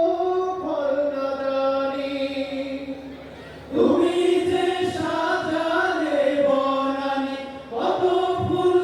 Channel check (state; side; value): identical; both; correlation 1.00